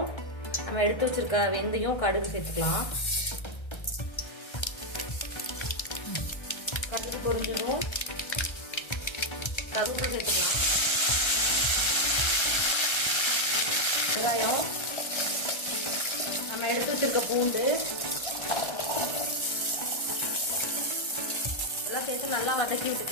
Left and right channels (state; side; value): late; right; 1.3 ms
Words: நம்ம எடுத்து வச்சிருக்க வெந்தயம், கடுகு சேர்த்துக்கலாம். கடுகு பொரிஞ்சதும் கருவேப்பிலை சேர்த்துக்கலாம். வெங்காயம், நம்ம எடுத்து வச்சிருக்க பூண்டு எல்லாம் சேர்த்து நல்லா வதக்கி